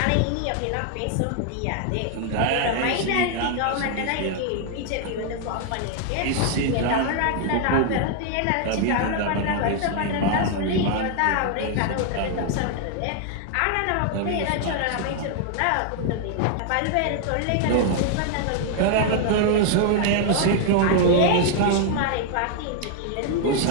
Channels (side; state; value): both; different; correlation 0.00